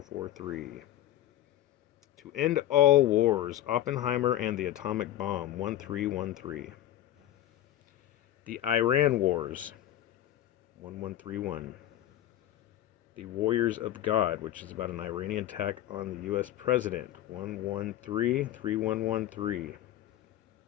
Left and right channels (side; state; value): right; quieter; 12.8 dB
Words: To End All Wars, Oppenheimer and the Atomic Bomb, 1313. The Iran Wars, 1131. The Warriors of God, which is about an Iranian attack on the U.S. president, 1133113.